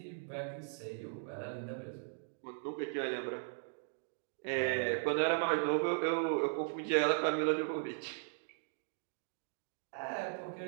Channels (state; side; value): silent; left; digital silence